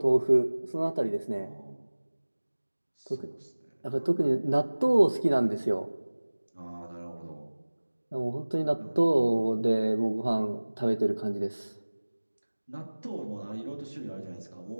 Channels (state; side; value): inverted; both; correlation -1.00